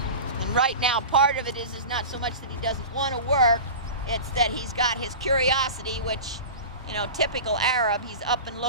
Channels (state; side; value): inverted; both; correlation -0.32